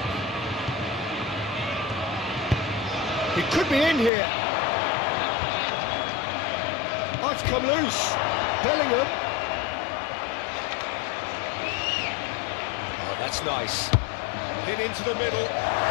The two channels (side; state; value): right; drops out; at 4.1 s